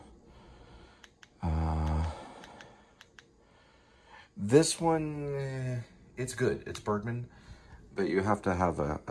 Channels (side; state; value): both; identical; correlation 1.00